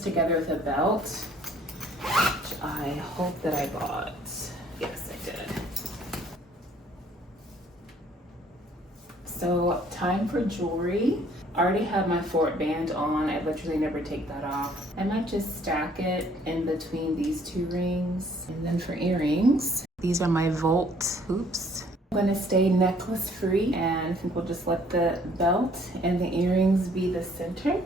together with a belt, which I hope that I bought. Yes, I did. So time for jewelry. I already have my Fort band on. I literally never take that off. I might just stack it in between these two rings. And then for earrings, these are my Volt hoops. I'm gonna stay necklace free, and I think we'll just let the belt and the earrings be the center.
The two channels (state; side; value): normal; both; correlation 0.60